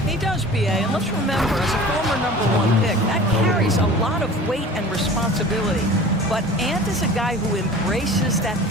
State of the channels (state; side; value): normal; both; correlation 0.42